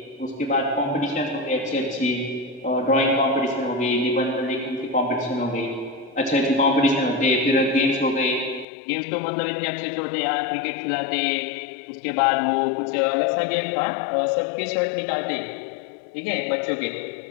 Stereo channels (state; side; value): drops out; right; at 8.7 s